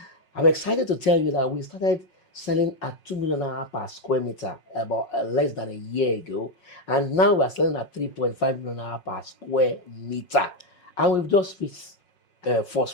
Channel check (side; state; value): right; late; 5.5 ms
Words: I'm excited to tell you that we started selling at 2 million naira per square meter about less than a year ago, and now we're selling at 3.5 million naira per square meter, and we've just reached first